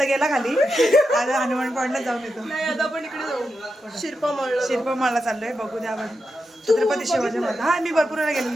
गेला खाली, आज हनुमान पॉइंटला जाऊन येतो. शिरपा माळला चाललोय. बघू द्या आपण छत्रपती शिवाजी महाराज. हा मी भरपूर वेळा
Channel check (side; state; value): both; normal; correlation 0.88